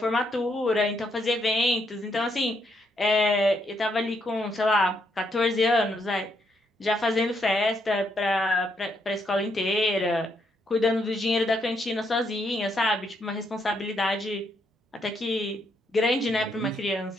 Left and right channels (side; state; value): both; normal; correlation 0.75